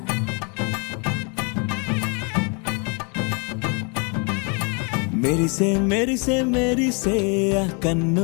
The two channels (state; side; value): quieter; right; 34.7 dB